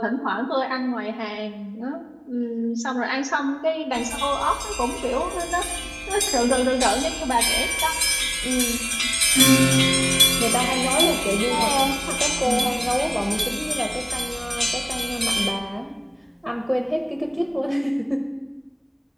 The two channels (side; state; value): both; identical; correlation 1.00